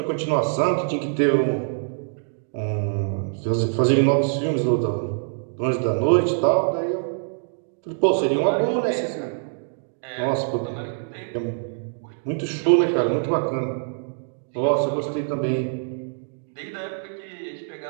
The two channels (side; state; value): left; silent; digital silence